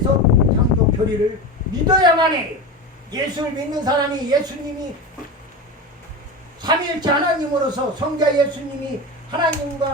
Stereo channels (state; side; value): normal; both; correlation 0.24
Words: 창조 교리를 믿어야만 해요. 예수를 믿는 사람이 예수님이 삼위일체 하나님으로서 성자 예수님이